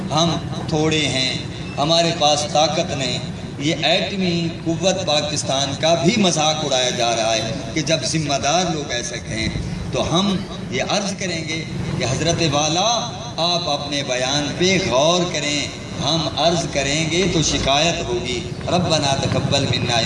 ہم تھوڑے ہیں، ہمارے پاس طاقت نہیں. یہ ایٹمی قوت پاکستان کا بھی مذاق اڑایا جا رہا ہے کہ جب ذمہ دار لوگ ایسے کہیں تو ہم یہ عرض کریں گے کہ حضرت والا آپ اپنے بیان پہ غور کریں. ہم عرض کریں گے تو شکایت ہوگی. ربنا تقبل منا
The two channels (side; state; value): both; identical; correlation 1.00